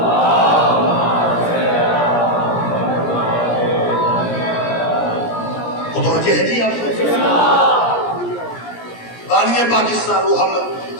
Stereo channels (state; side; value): late; right; 17 ms